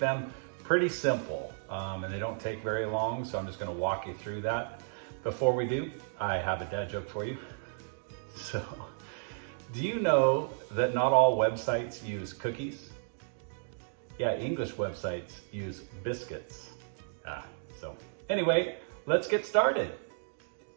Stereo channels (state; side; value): silent; left; digital silence